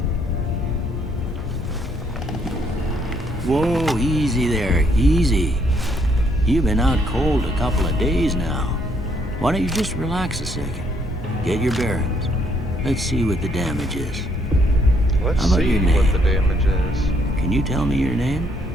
that? Whoa, easy there, easy. You've been out cold a couple of days now. Why don't you just relax a second? Get your bearings. Let's see what the damage is. Let's How about see your what name? the damage is. Can you tell me your name?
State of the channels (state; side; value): normal; both; correlation 0.70